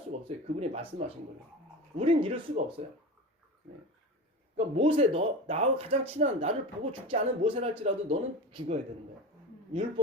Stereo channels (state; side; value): normal; both; correlation 0.29